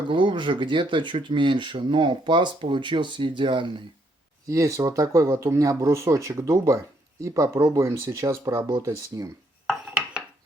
глубже, где-то чуть меньше, но паз получился идеальный. Есть вот такой вот у меня брусочек дуба, и попробуем сейчас поработать с ним.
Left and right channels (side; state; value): both; normal; correlation 0.72